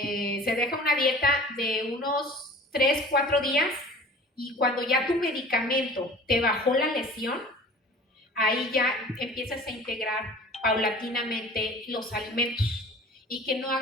deja una dieta de unos 3-4 días, y cuando ya tu medicamento te bajó la lesión, ahí ya empiezas a integrar paulatinamente los alimentos, y que no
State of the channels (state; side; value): normal; both; correlation 0.44